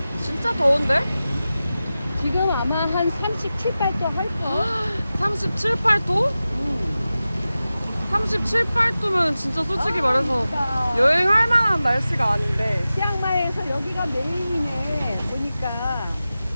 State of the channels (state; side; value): inverted; both; correlation -0.95